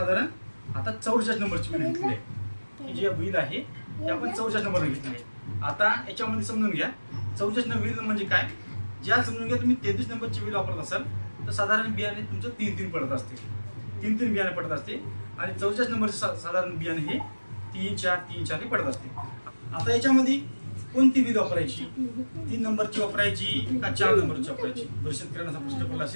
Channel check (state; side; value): inverted; both; correlation -1.00